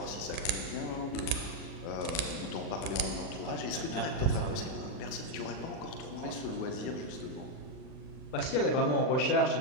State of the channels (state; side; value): late; right; 39 ms